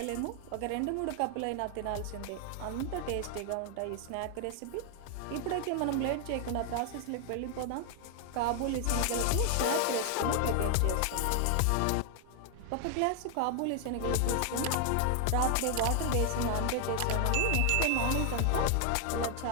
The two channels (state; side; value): different; both; correlation 0.00